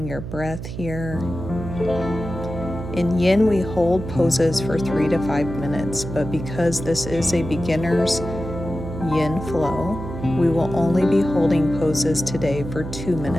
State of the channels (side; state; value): right; noise; hum, 8 dB below the sound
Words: your breath here. In yin, we hold poses for 3 to 5 minutes, but because this is a beginner's yin flow, we will only be holding poses today for 2